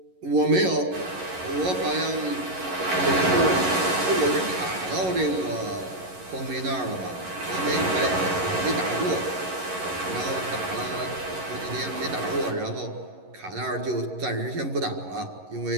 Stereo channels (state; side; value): late; left; 11 ms